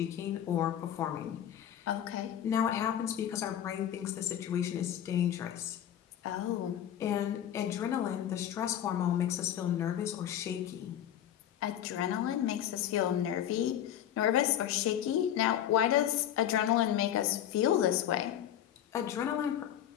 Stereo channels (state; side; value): quieter; right; 10.7 dB